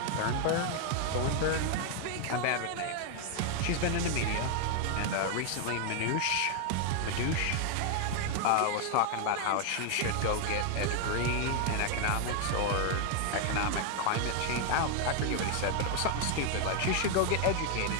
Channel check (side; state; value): both; different; correlation 0.00